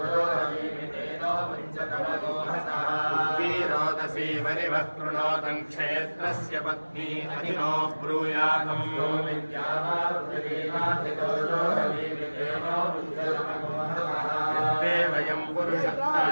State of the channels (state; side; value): inverted; both; correlation -1.00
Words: परिवः कृणोतं क्षेत्रस्य पत्नी अहिनो ब्रूयातम् यो यद्वे वयं